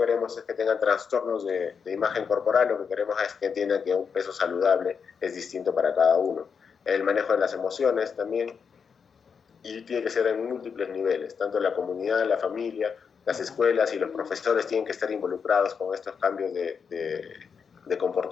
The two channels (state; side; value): quieter; right; 6.2 dB